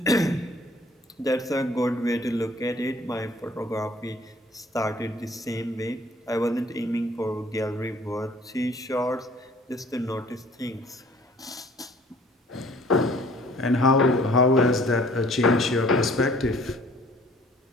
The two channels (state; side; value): normal; both; correlation 0.55